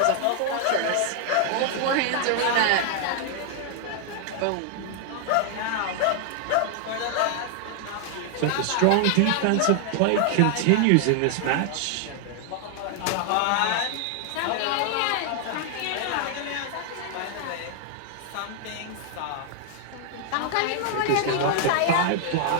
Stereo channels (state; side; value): different; both; correlation 0.00